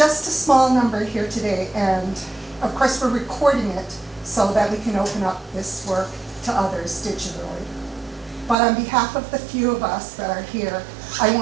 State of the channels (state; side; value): drops out; left; at 8.6 s